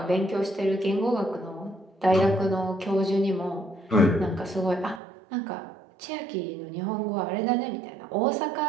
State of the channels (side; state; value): left; drops out; at 5.0 s